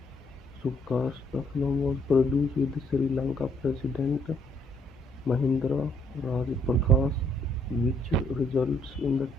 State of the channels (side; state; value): both; normal; correlation 0.68